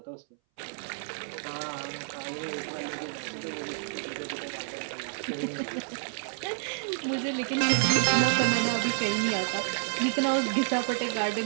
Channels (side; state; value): left; silent; 58 dB below the other